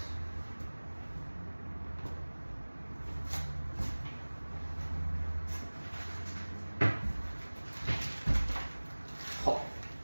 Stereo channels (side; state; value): both; inverted; correlation -1.00